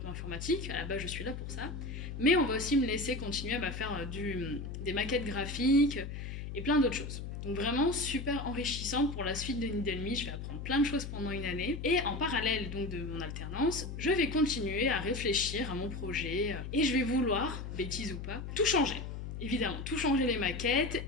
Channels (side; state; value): left; noise; hum, 7 dB below the sound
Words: informatique, à la base je suis là pour ça. Mais on va aussi me laisser continuer à faire des maquettes graphiques et plein d'autres choses. Donc vraiment super enrichissant pour la suite de Needle Me, je vais apprendre plein de choses pendant une année. Et en parallèle donc de mon alternance, je vais continuer à réfléchir à mon projet et je vais vouloir, bêtise ou pas, tout changer. Évidemment, tout changer les maquettes,